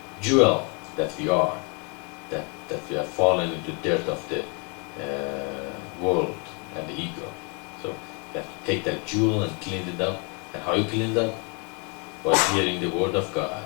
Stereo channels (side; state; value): right; quieter; 34.3 dB